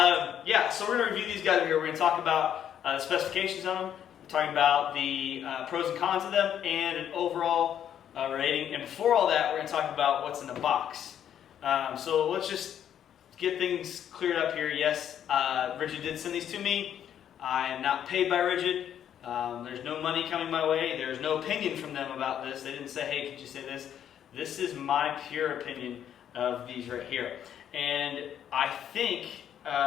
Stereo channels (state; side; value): quieter; right; 9.7 dB